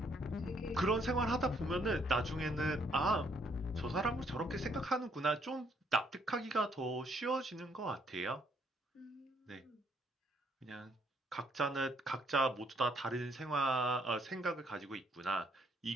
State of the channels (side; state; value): both; normal; correlation 0.69